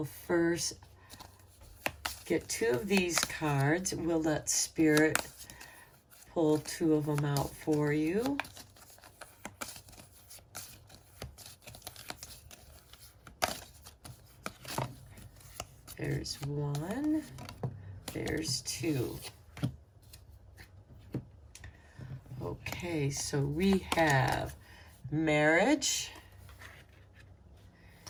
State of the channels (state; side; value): identical; both; correlation 1.00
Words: first get 2 of these cards. We'll let Spirit pull 2 of them out for you. There's 1. There's 2. Okay, so we have marriage